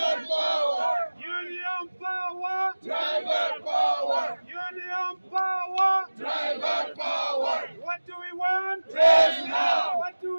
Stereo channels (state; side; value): inverted; both; correlation -1.00